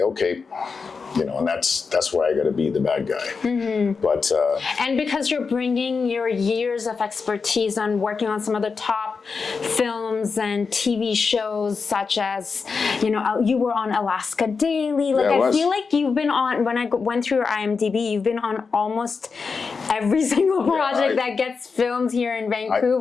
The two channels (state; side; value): quieter; right; 5.0 dB